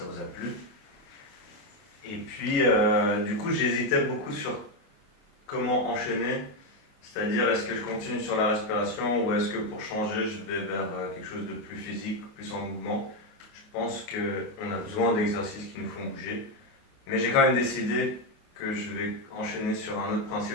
vous a plu. Et puis, du coup, j'hésitais beaucoup sur comment enchaîner, c'est-à-dire est-ce que je continue sur la respiration ou est-ce que pour changer, je vais vers quelque chose de plus physique, plus en mouvement. Je pense qu'on a besoin d'exercices qui nous font bouger, mais j'ai quand même décidé que je vais enchaîner sur un autre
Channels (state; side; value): late; right; 28 ms